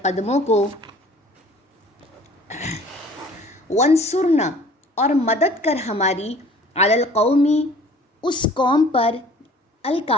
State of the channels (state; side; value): normal; both; correlation 0.50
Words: قدموں کو، وانصرنا، اور مدد کر ہماری، علی القومی، اس قوم پر،